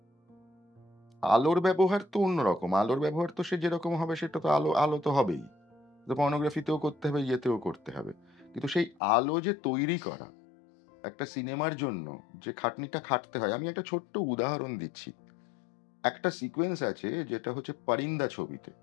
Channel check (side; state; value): right; drops out; at 9.0 s